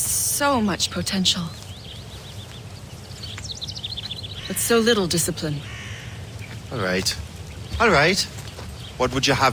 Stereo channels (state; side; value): identical; both; correlation 1.00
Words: much potential. But so little discipline. All right. All right. What would you